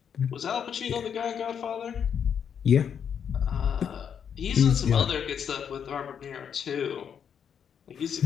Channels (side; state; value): right; quieter; 7.8 dB